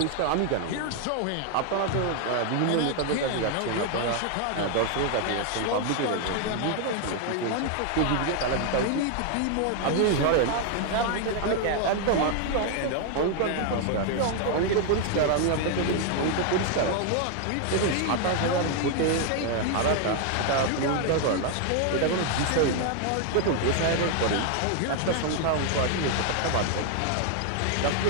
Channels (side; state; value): both; different; correlation 0.00